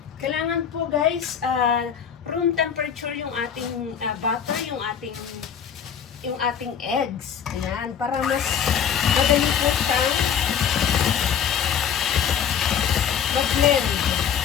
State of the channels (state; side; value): quieter; right; 8.0 dB